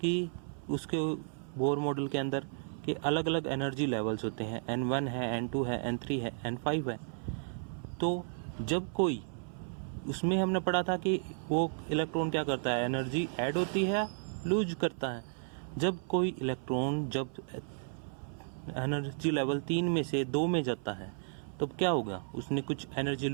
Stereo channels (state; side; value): silent; left; 55 dB below the other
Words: कि उसके बोर मॉडल के अंदर कि अलग अलग एनर्जी लेवल्स होते हैं, N1 है, N2 है, N3 है, N5 है। तो जब कोई उसमें हमने पढ़ा था कि वो इलेक्ट्रॉन क्या करता है, एनर्जी ऐड होती है, लूज करता है। जब कोई इलेक्ट्रॉन जब एनर्जी लेवल 3 में से 2 में जाता है तो क्या होगा, उसने कुछ एनर्जी